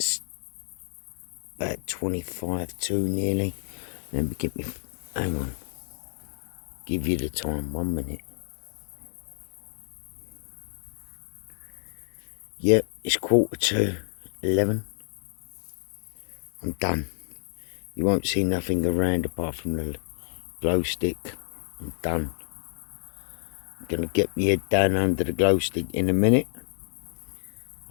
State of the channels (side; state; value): right; silent; digital silence